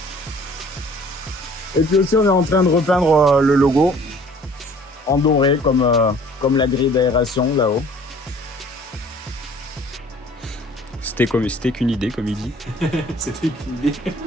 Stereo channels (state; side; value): normal; both; correlation 0.53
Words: Et puis aussi, on est en train de repeindre le logo en doré comme la grille d'aération là-haut. C'était qu'une idée, comme il dit. C'était une idée.